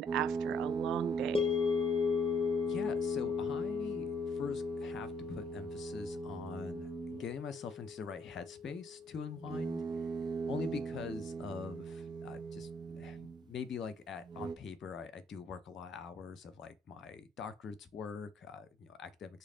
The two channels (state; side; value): normal; both; correlation 0.67